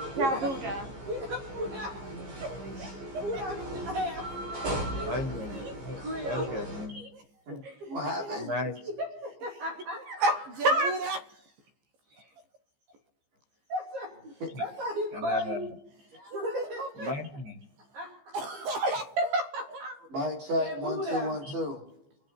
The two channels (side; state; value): left; late; 15 ms